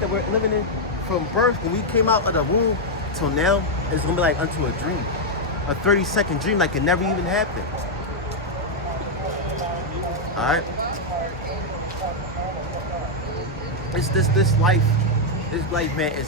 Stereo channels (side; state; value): both; normal; correlation -0.01